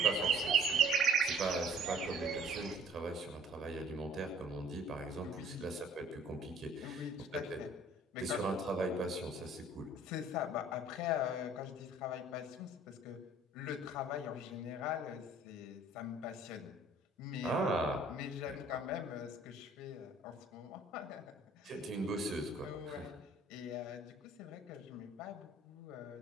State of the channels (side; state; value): both; normal; correlation 0.54